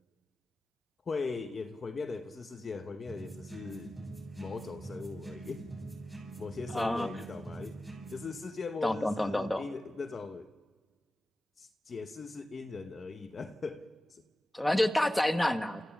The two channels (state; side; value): normal; both; correlation 0.95